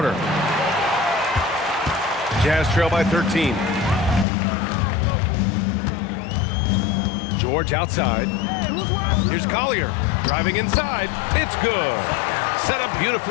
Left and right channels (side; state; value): right; drops out; at 4.2 s